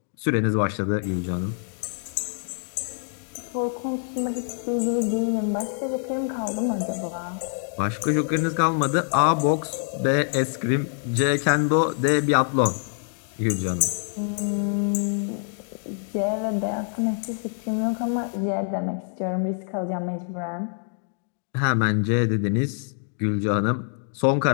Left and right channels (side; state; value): right; silent; 60 dB below the other